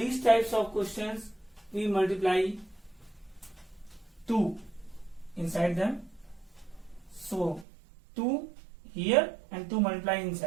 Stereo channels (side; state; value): left; drops out; at 7.7 s